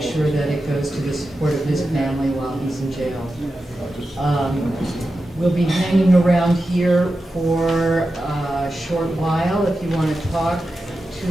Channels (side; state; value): both; normal; correlation 0.91